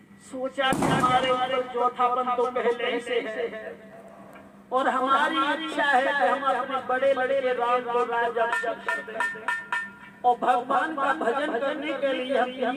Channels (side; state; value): both; identical; correlation 1.00